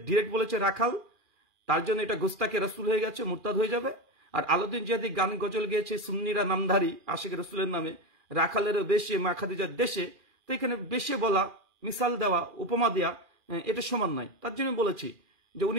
ডিরেক্ট বলেছে রাখাল, তার জন্য এটা গোস্তাকে রসুল হয়ে গেছে, মুরতাদ হয়ে যাবে। আর আলাউদ্দিন জিহাদি গান গজল গেয়েছে সুন্নিরা নামধারী আশিক রসুলের নামে, রাখালেরও বেশে মা খাদিজার দেশে। তো এখানে বেশে বলা, মিসাল দেওয়া, উপমা দেওয়া এটা সমান নয়। তার জন্য বলেছি যে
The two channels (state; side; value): late; left; 2.4 ms